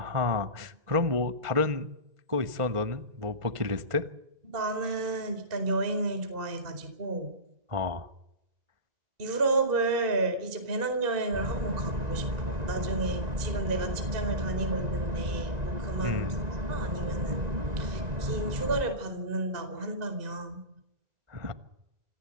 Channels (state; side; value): late; left; 1.9 ms